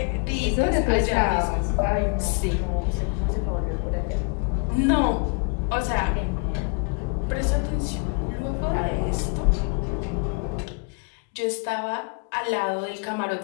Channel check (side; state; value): right; quieter; 35.6 dB